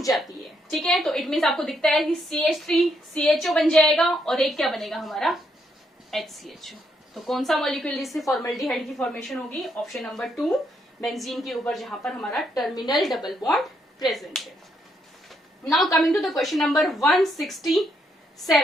जाती है। ठीक है, तो इट मीन्स आपको दिखता है कि CH3 CHO बन जाएगा और एक क्या बनेगा हमारा HCHO। तो कौन सा मॉलिक्यूल जिससे फॉर्मेल्डिहाइड की फॉर्मेशन होगी? ऑप्शन नंबर 2, बेंजीन के ऊपर जहां पर हमारा टर्मिनल डबल बॉन्ड प्रेजेंट है। Now coming to the question number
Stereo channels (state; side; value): normal; both; correlation 0.76